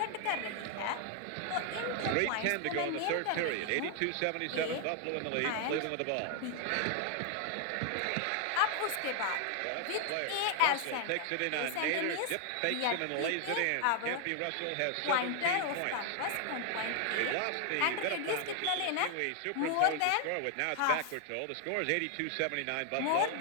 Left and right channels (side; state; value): both; different; correlation 0.00